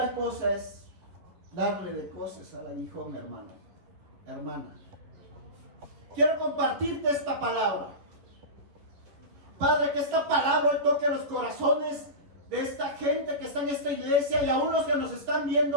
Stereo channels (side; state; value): left; late; 10 ms